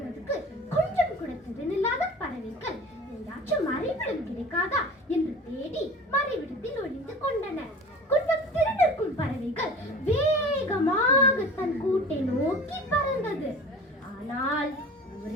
கொஞ்சம் கூட திறனில்லாத பறவைகள் எங்காச்சும் மறைவிடம் கிடைக்காதா என்று தேடி மறைவிடத்தில் ஒளிந்து கொண்டன. கொஞ்சம் திறனிருக்கும் பறவைகள் வேகமாக தன் கூட்டை நோக்கி பறந்தது. ஆனால்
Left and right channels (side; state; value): both; normal; correlation 0.40